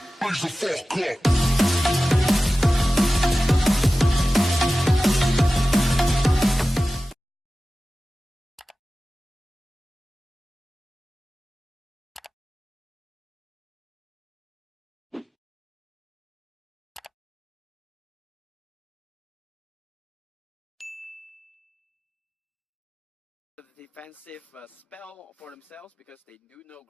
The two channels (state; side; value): normal; both; correlation 0.95